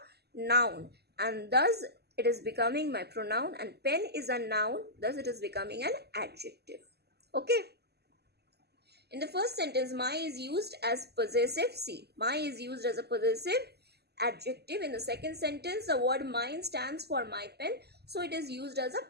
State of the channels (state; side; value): late; left; 0.47 ms